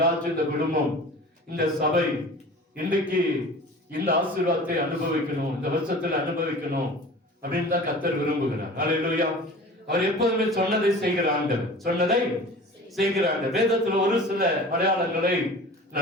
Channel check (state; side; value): normal; both; correlation 0.40